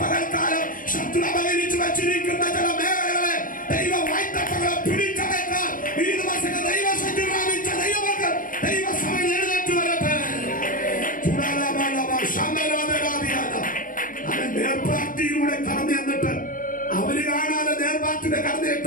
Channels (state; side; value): late; right; 0.40 ms